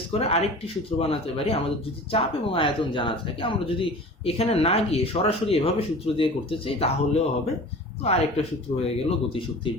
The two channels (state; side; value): normal; both; correlation 0.39